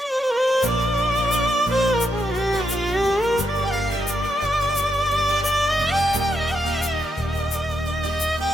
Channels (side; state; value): both; normal; correlation 0.81